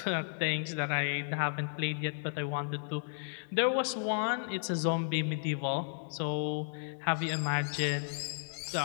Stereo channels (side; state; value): right; silent; digital silence